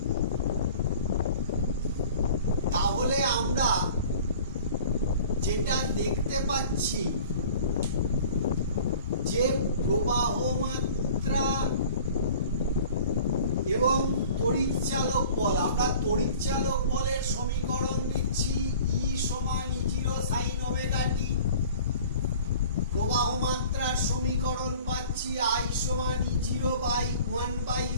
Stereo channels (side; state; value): both; inverted; correlation -0.46